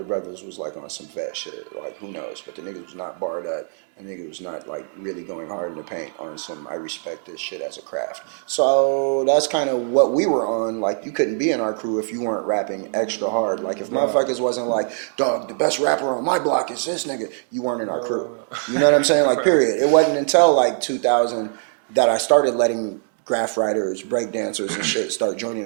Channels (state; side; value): silent; left; 64 dB below the other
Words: brothers was on some vet shit. Who knows? But the nigga was not barred up. The nigga was not really going hard in the paint on some I respect this shit as a craft. So that's kind of what we were on. You couldn't be in our crew if you weren't rapping extra hard. If motherfuckers wasn't dog, the best rapper on my block is this nigga, you weren't in our crew. You know what I'm saying? Period. It wasn't until 2000 that I started letting graph writers, break dancers and shit start joining